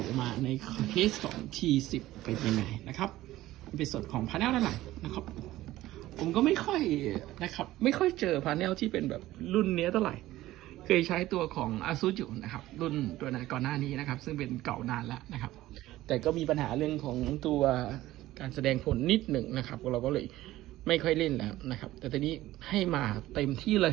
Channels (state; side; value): quieter; left; 15.9 dB